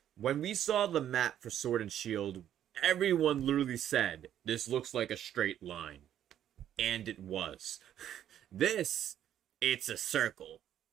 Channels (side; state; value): left; quieter; 10.7 dB